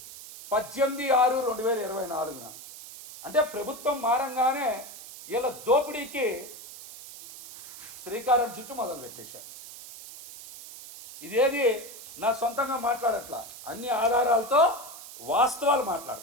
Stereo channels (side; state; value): right; noise; hiss, 14 dB below the sound